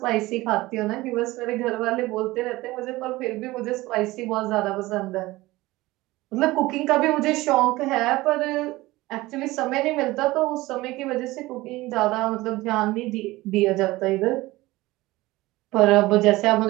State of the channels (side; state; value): left; quieter; 19.3 dB